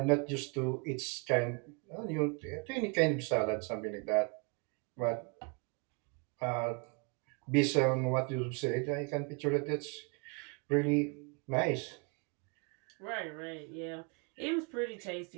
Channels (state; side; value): quieter; left; 32.2 dB